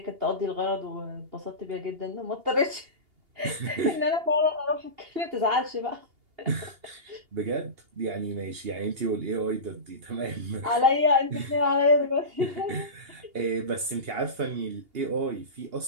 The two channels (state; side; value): late; left; 2.8 ms